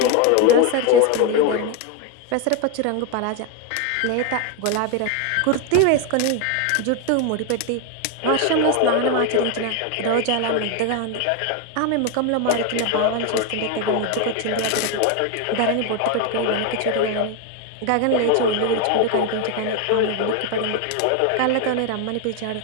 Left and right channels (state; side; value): different; both; correlation 0.01